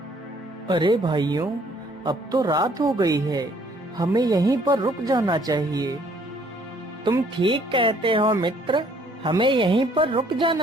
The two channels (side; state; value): both; normal; correlation 0.62